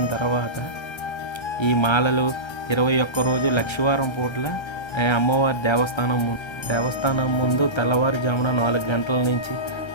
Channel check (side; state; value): right; late; 1.3 ms